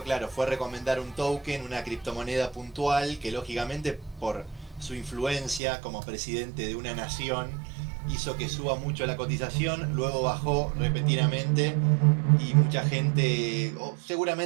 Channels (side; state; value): left; drops out; at 5.6 s